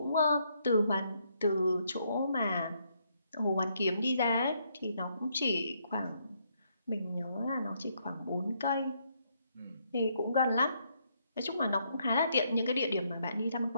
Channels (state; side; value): inverted; both; correlation -0.73